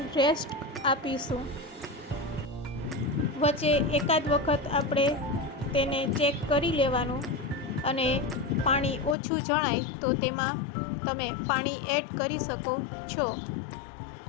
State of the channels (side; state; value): right; drops out; at 9.2 s